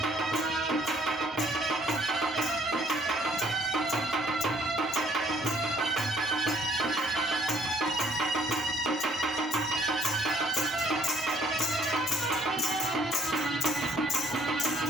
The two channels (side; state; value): both; normal; correlation 0.63